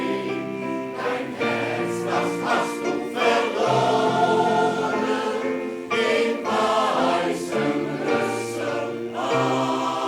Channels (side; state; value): both; identical; correlation 1.00